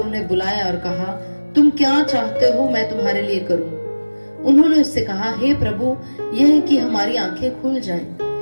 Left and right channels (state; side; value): inverted; both; correlation -1.00